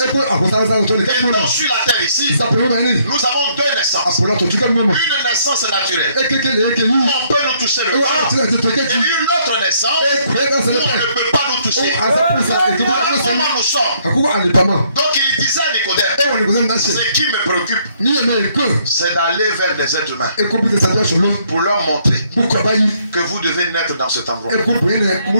donc sur la terre ici, nous avons deux naissances. Une naissance naturelle, où on peut nous toucher le corps, et une autre naissance, où on ne peut pas nous toucher. Voilà comment nous sommes. Donc il disait à Nicodème, ce qui me préoccupe, c'est d'aller vers des êtres humains pour leur montrer que vous devez naître dans cet endroit.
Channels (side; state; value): both; inverted; correlation -0.68